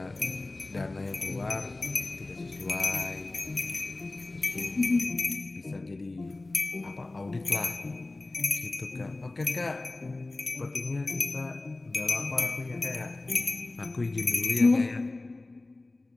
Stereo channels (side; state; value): right; quieter; 3.0 dB